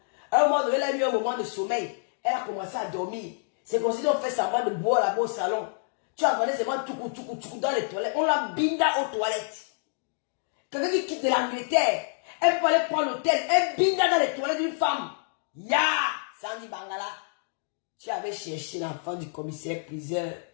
À un moment donné, elle a eu un moment de sommeil. Elle a commencé à dormir. C'est comme si on fait semblant de boire là-bas au salon. Tu as regardé seulement tout dans les toilettes. On l'a Binda aux toilettes. Quelqu'un qui quitte de l'Angleterre, elle peut aller prendre l'hôtel, elle Binda dans les toilettes d'une femme. Ya! Sandy Bangala. Tu avais cherché l'enfant du commissaire priseur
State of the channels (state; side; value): silent; right; digital silence